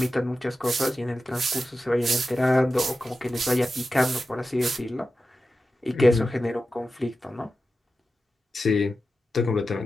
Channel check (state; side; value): normal; both; correlation 0.92